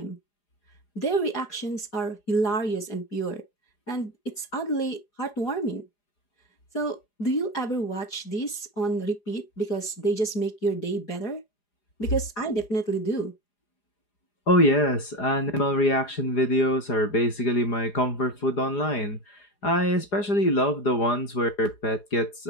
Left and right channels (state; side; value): late; right; 4.8 ms